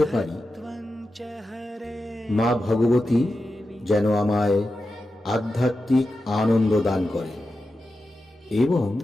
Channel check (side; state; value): both; normal; correlation 0.91